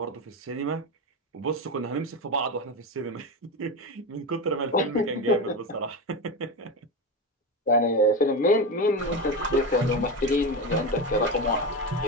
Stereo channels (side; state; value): both; normal; correlation 0.18